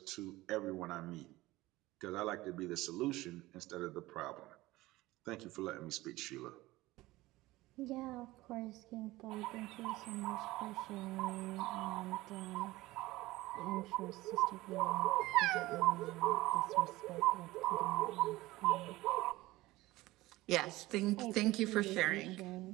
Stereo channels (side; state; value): left; quieter; 18.6 dB